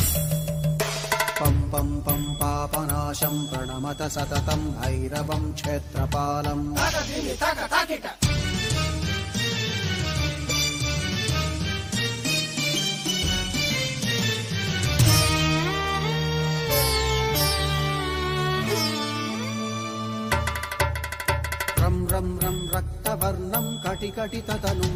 पं पं पं पापनाशं प्रणमत सततं भैरवं क्षेत्रपालम् रं रं रं रक्तवर्णं कटिकटिततनुं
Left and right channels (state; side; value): identical; both; correlation 1.00